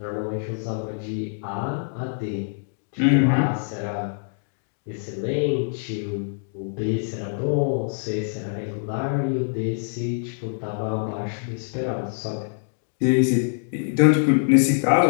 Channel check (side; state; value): right; silent; digital silence